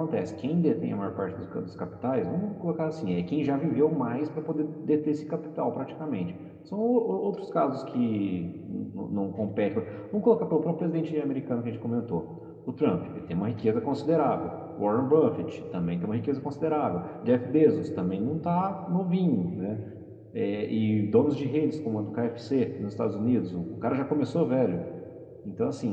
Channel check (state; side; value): identical; both; correlation 1.00